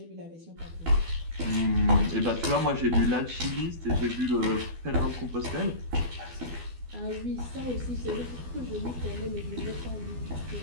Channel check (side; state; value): left; late; 12 ms